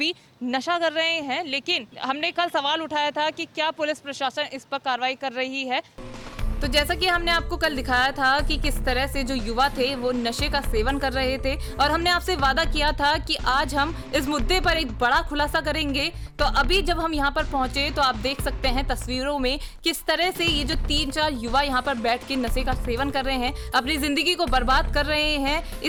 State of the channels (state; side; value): identical; both; correlation 1.00